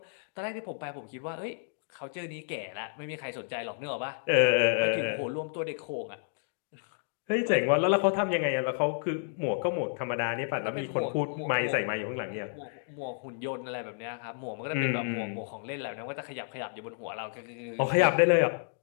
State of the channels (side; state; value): right; silent; digital silence